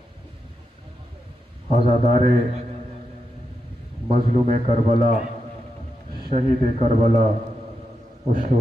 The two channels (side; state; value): both; normal; correlation 0.86